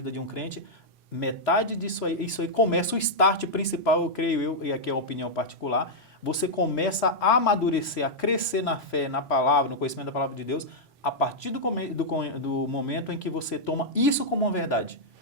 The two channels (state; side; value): normal; both; correlation -0.06